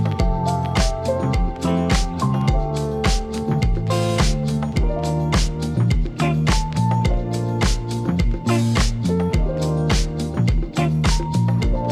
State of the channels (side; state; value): both; identical; correlation 1.00